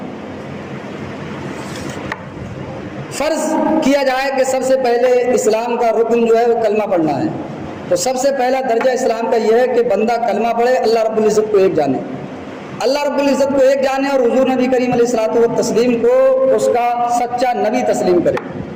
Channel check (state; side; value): identical; both; correlation 1.00